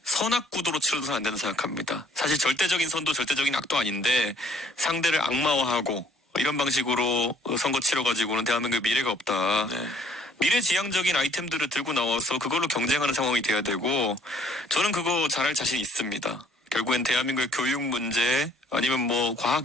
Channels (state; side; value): normal; both; correlation 0.60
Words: 선악구도로 치러서는 안 된다고 생각합니다. 사실 절대적인 선도 절대적인 악도 아닌데 상대를 악마화하고 이런 방식으로 선거 치러가지고는 대한민국의 미래가 없다. 네. 미래지향적인 아이템들을 들고 나와서 그걸로 경쟁하는 상황이 돼야 되고 저는 그거 잘할 자신 있습니다. 결국엔 대한민국의 교육 문제 아니면 뭐